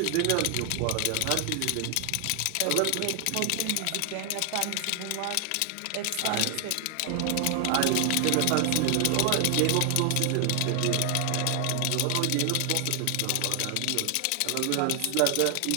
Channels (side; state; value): both; different; correlation 0.00